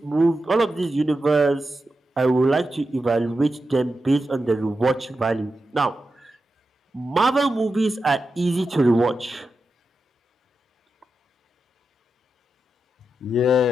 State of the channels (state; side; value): normal; both; correlation 0.90